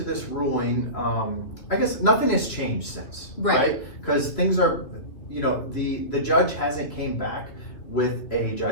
this ruling, I guess nothing has changed since, right? Because things are, the judge hasn't came back with a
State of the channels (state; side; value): late; right; 2.8 ms